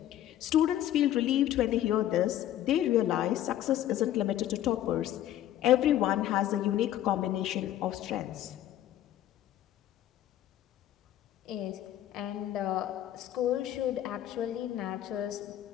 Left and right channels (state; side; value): quieter; right; 12.5 dB